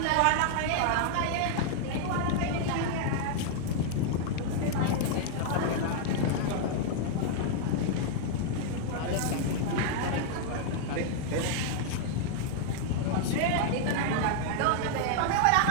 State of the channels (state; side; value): different; both; correlation -0.01